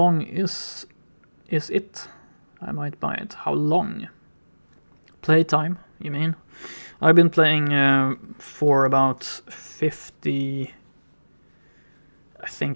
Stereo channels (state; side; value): inverted; both; correlation -1.00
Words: is it? I might buy it. How long? Playtime, you mean? I've been playing for about 50... I